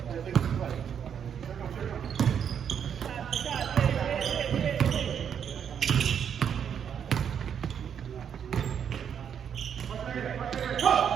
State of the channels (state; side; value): quieter; left; 8.1 dB